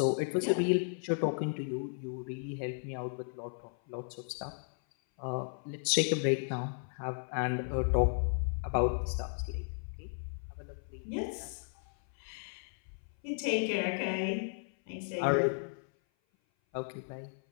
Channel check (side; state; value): right; silent; 55 dB below the other